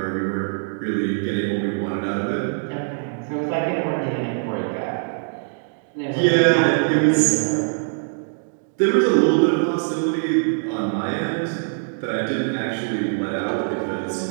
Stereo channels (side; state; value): left; silent; digital silence